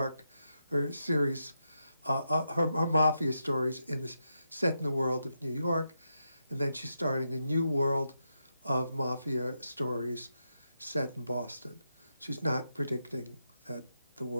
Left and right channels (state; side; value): inverted; both; correlation -0.85